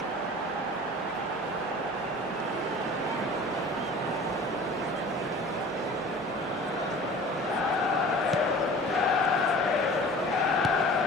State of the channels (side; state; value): both; normal; correlation 0.42